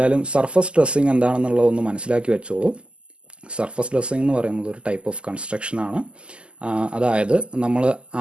സർഫസ് ഡ്രസ്സിങ് എന്താണെന്നുള്ളതൊന്ന് മനസ്സിലാക്കി വെച്ചോളൂ. സർഫസ് ഡ്രസ്സിങ് എന്ന് പറയുന്നത് ഒരു ടൈപ്പ് ഓഫ് കൺസ്ട്രക്ഷൻ ആണ്. അതായത്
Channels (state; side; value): late; left; 0.051 ms